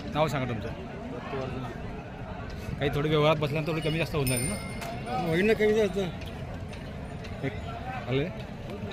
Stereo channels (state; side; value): identical; both; correlation 1.00